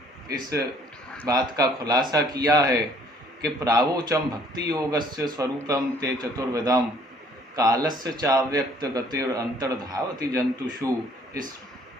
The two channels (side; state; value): both; normal; correlation 0.59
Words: इस बात का खुलासा किया है कि प्रावोचम भक्ति योगस्य स्वरूपम ते चतुर्विधम कालस्य चाव्यक्त गतिर अंतर्धावति जंतुषु।